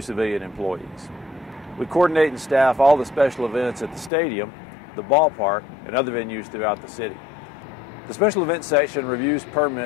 civilian employees. We coordinate and staff all the special events at the stadium, the ballpark, and other venues throughout the city. The Special Events Section reviews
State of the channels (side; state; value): right; drops out; at 4.1 s